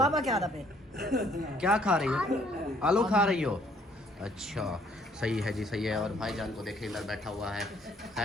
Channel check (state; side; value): normal; both; correlation 0.63